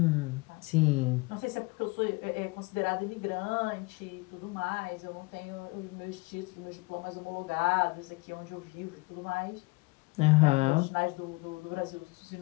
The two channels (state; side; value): quieter; right; 25.9 dB